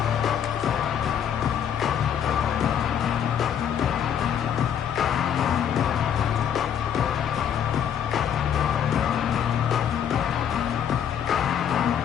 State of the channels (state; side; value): quieter; right; 8.9 dB